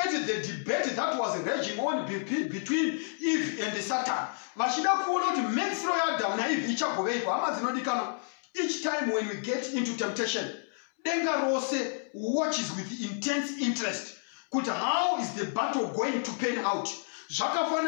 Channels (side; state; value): right; silent; 58 dB below the other